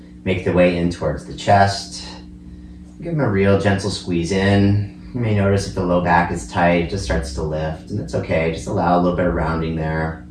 make their way in towards the chest. Give them a real gentle squeeze in. You may notice if the low back is tight, it just starts to lift, and that's okay. Just allow a little bit of rounding there.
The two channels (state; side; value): identical; both; correlation 1.00